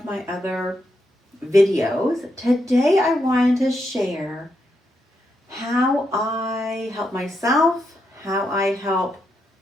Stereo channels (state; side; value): normal; both; correlation 0.82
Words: my other videos. Today, I wanted to share how I help myself, how I help